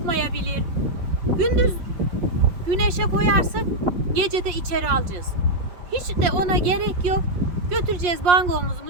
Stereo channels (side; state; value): left; late; 5.6 ms